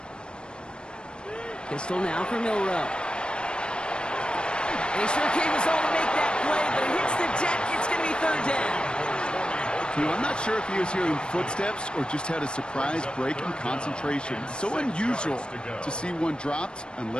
Pistol now for Milrow. And he sure came his all to make that play, but it hits the deck. It's going to be third down. You know, I'm not sure if he was hearing footsteps or just had a surprise break in concentration. It's so unusual to see one dropped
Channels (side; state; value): right; late; 0.053 ms